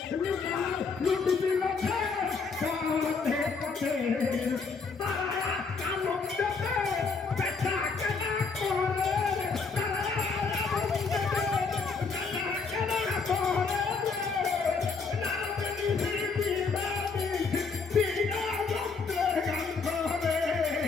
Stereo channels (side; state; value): right; quieter; 4.8 dB